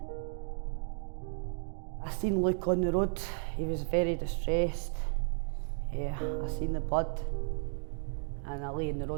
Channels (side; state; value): left; silent; 55 dB below the other